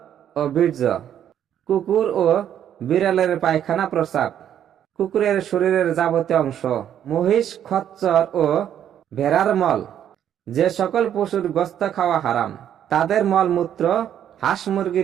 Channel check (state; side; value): quieter; left; 10.0 dB